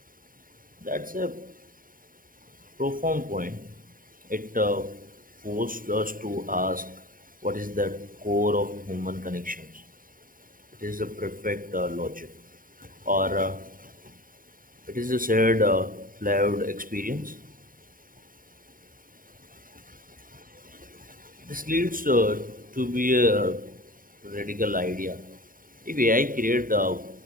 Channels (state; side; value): late; left; 0.41 ms